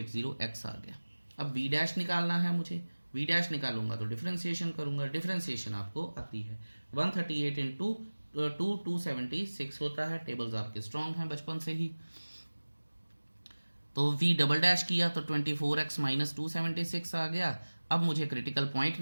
आ गया। अब v डैश निकालना है मुझे, v डैश निकालूंगा तो डिफरेंशिएशन करूंगा, डिफरेंशिएशन आपको आती है 138 इंटू 276 होता है। टेबल्स आपके स्ट्रॉन्ग हैं बचपन से ही। तो v डबल डैश किया तो 24x - 276 आ गया। अब मुझे क्रिटिकल पॉइंट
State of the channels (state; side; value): inverted; both; correlation -1.00